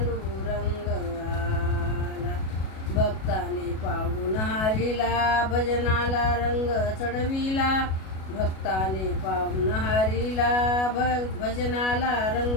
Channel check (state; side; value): late; right; 37 ms